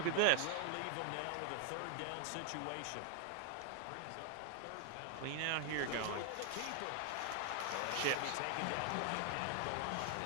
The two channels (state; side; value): different; both; correlation 0.00